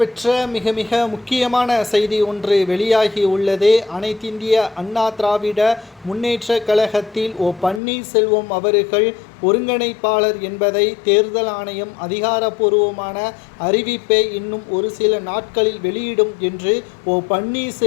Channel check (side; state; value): right; drops out; at 7.8 s